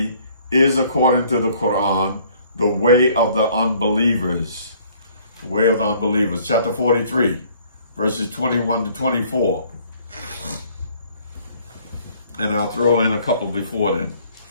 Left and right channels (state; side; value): inverted; both; correlation -0.58